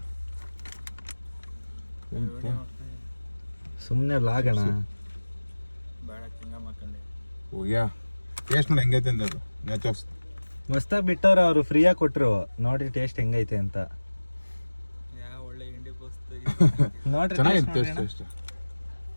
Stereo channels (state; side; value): inverted; both; correlation -1.00